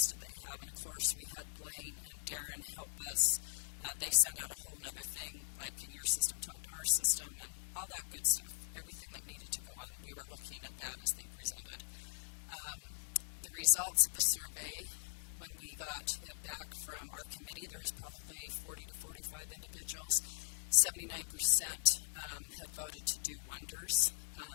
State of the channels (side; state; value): right; silent; digital silence